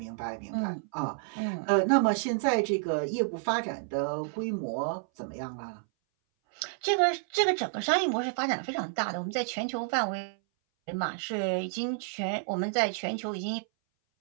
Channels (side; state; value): left; silent; 58 dB below the other